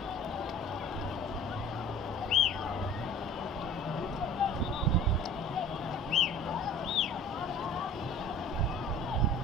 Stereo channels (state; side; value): normal; both; correlation 0.45